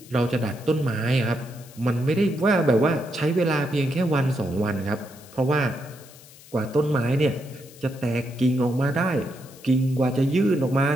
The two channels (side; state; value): left; noise; hiss, 22 dB below the sound